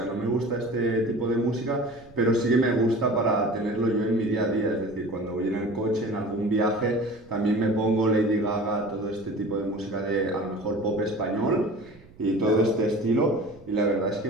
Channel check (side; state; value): right; noise; rumble, 24 dB below the sound